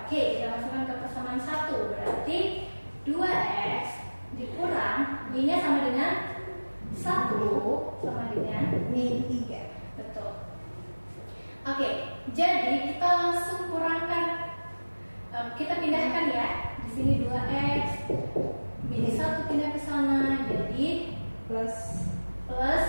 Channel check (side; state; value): both; inverted; correlation -1.00